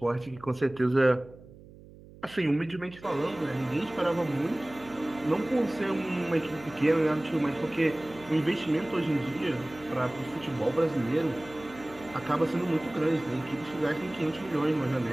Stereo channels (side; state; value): right; noise; hum, 20 dB below the sound